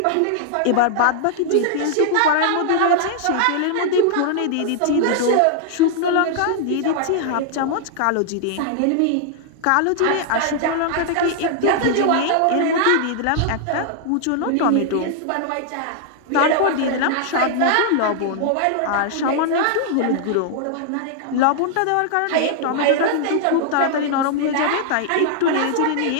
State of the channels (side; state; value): both; different; correlation -0.01